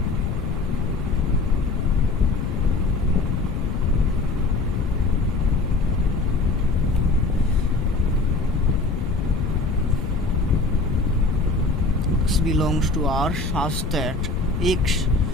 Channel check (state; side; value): noise; left; rumble, 3 dB below the sound